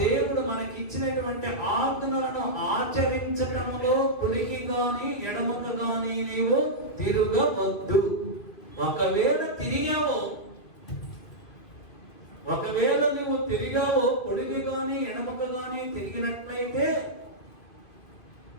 దేవుడు మనకి ఇచ్చినటువంటి ఆజ్ఞలను ఆచరించటములో కుడికి గాని ఎడమకు గాని నీవు తిరగవద్దు. ఒకవేళ నువ్వు తిరిగావో కుడికి గాని ఎడమకు గాని తిరిగినట్లయితే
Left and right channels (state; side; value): late; right; 2.3 ms